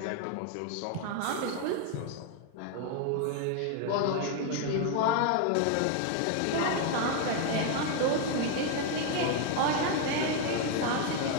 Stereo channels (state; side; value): different; both; correlation 0.01